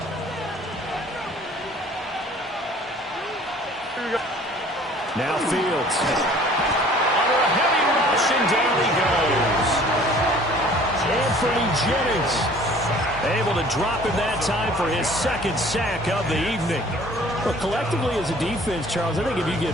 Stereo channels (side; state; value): both; normal; correlation 0.51